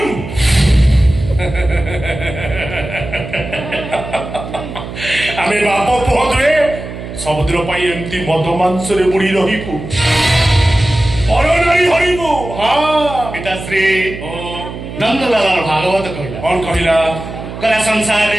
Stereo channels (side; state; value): right; noise; hum, 10 dB below the sound